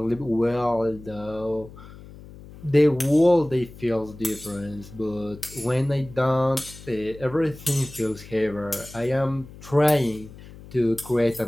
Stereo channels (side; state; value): left; noise; hum, 18 dB below the sound